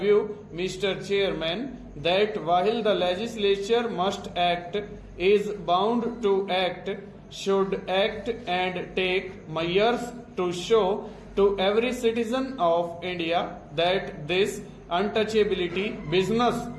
Mr. Chairman, that while the legislature must act, is bound to act, should act and take measures to show to every citizen of India that this untouchability business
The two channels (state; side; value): identical; both; correlation 1.00